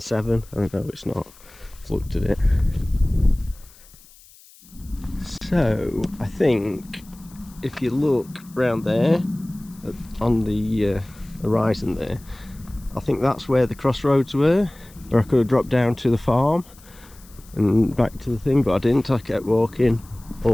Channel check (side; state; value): left; noise; hiss, 25 dB below the sound